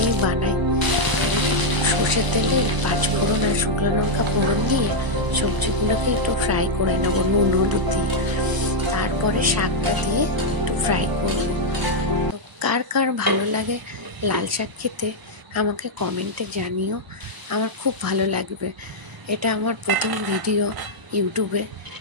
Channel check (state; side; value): late; left; 1.0 ms